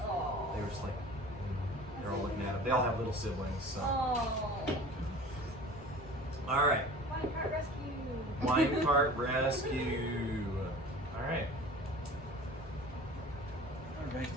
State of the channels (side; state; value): both; normal; correlation 0.41